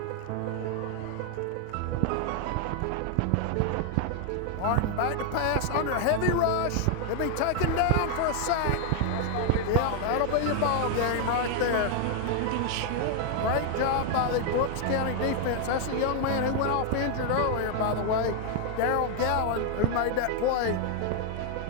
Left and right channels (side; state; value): both; different; correlation 0.00